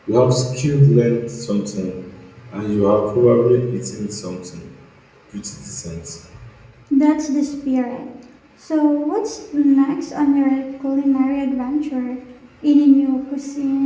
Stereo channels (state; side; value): identical; both; correlation 1.00